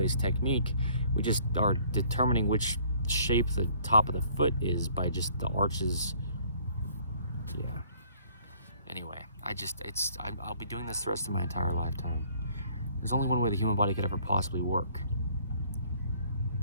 technique. We just are determining which shape the top of the foot is by just the arches. Yeah. Anyway, I'll be doing this the rest of my entire lifetime. There's only one way the human body could ever possibly work.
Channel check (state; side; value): inverted; both; correlation -0.58